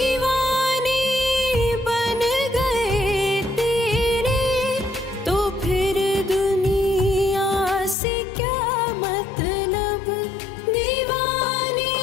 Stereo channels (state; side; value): drops out; right; at 8.0 s